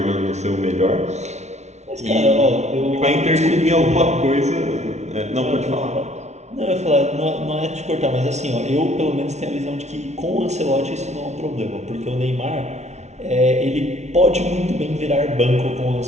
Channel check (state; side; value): late; left; 0.32 ms